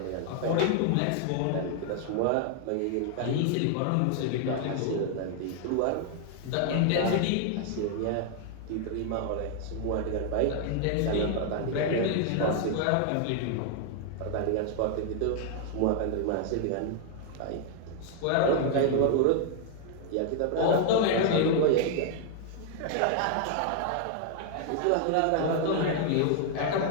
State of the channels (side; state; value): both; different; correlation 0.00